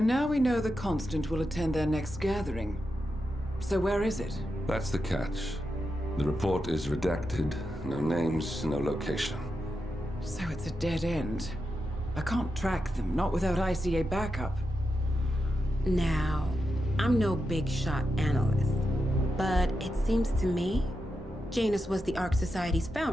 now we know the Constant will attend their next gathering. So where is it? That's the catch. The report is redacted. No names, no location. So it's a dead end. I can't track them, not without ICA backup. Now, I'm no big shot analyst, but it seems to me Janus was the Ark Society's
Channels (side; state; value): both; normal; correlation 0.87